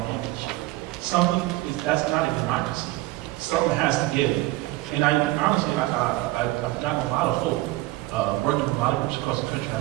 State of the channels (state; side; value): quieter; left; 19.0 dB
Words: image. That's not a democracy. Something has to give. And honestly, I've gotten a lot of hope working with a lot of groups across the country.